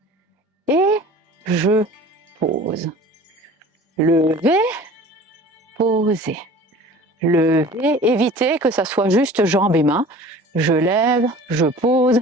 Et je pose. Lever, poser. Lever, évitez que ça soit juste jambes et mains. Je lève, je pose.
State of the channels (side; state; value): both; normal; correlation 0.43